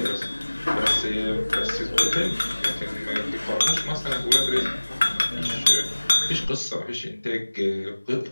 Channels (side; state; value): both; inverted; correlation -1.00